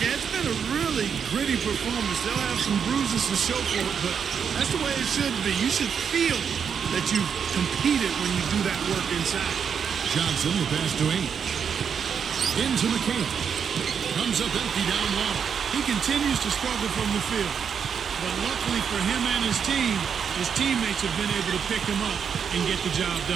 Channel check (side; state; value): left; quieter; 7.1 dB